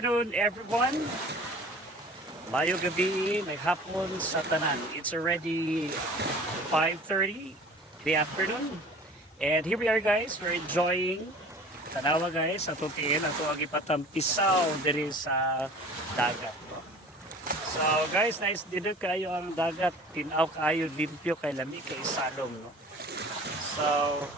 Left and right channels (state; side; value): normal; both; correlation 0.44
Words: everyone. Mayo gabi, may hapon sa tanan. It's already 5:30 the afternoon. And here we are guys, we're enjoying tanawa guys, sa tutiin ato ang ipatampisaw diri sa dagat. So guys, nice dinner kayo ang dagat. Tinaw kayo, limpyo kay lami kay salong. No? So,